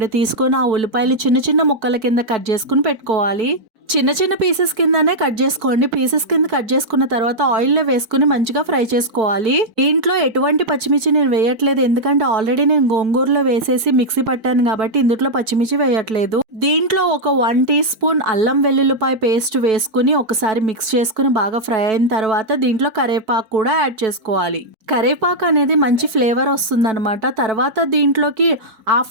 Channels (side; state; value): left; late; 4.6 ms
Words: తీసుకొని ఆ ఉల్లిపాయలు చిన్న చిన్న ముక్కల కింద కట్ చేసుకుని పెట్టుకోవాలి. చిన్న చిన్న పీసెస్ కిందనే కట్ చేసుకోండి. పీసెస్ కింద కట్ చేసుకున్న తర్వాత ఆయిల్లో వేసుకుని మంచిగా ఫ్రై చేసుకోవాలి. దీంట్లో ఎటువంటి పచ్చిమిర్చి నేను వేయట్లేదు, ఎందుకంటే ఆల్రెడీ నేను గోంగూరలో వేసేసి మిక్సీ పట్టాను కాబట్టి ఇందులో పచ్చిమిర్చి వేయట్లేదు. దీంట్లో ఒక 1 టీ స్పూన్ అల్లం వెల్లుల్లిపాయ పేస్ట్ వేసుకుని ఒకసారి మిక్స్ చేసుకుని బాగా ఫ్రై అయిన తర్వాత దీంట్లో కరివేపాకు కూడా యాడ్ చేసుకోవాలి. కరివేపాకు అనేది మంచి ఫ్లేవర్ వస్తుంది అనమాట. తర్వాత దీంట్లోకి